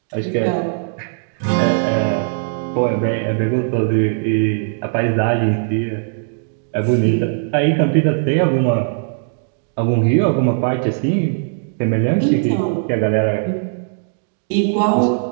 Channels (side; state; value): left; silent; digital silence